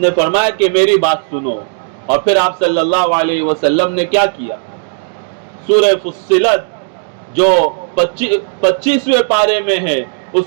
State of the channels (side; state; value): left; silent; digital silence